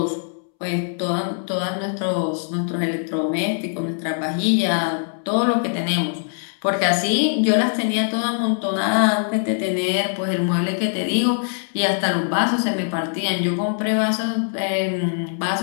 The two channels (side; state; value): right; silent; 64 dB below the other